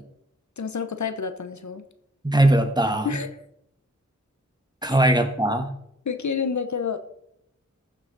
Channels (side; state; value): both; normal; correlation 0.57